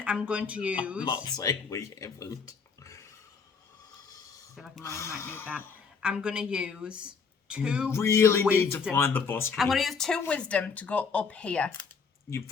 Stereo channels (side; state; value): right; quieter; 5.5 dB